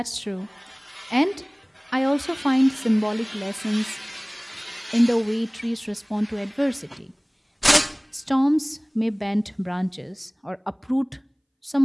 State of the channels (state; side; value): identical; both; correlation 1.00